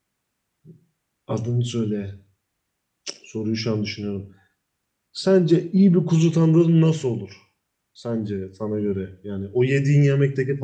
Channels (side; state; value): both; identical; correlation 1.00